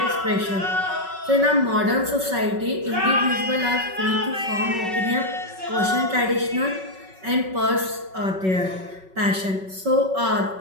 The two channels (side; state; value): left; late; 5.3 ms